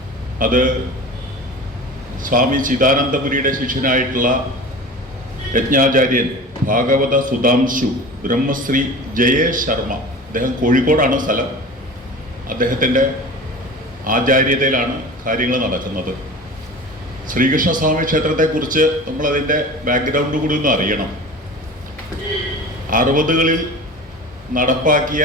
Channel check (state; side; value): normal; both; correlation 0.36